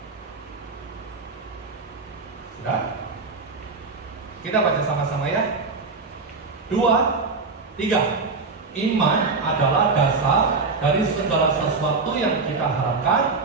Sudah? Kita baca sama-sama ya. 2, 3. Iman adalah dasar dari segala sesuatu yang kita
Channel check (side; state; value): left; quieter; 4.2 dB